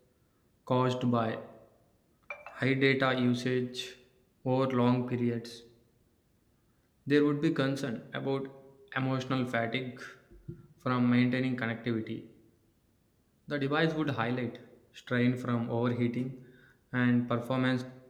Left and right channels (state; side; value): identical; both; correlation 1.00